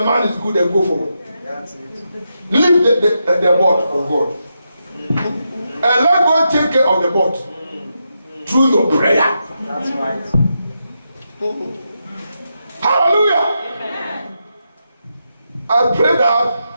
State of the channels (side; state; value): both; inverted; correlation -0.85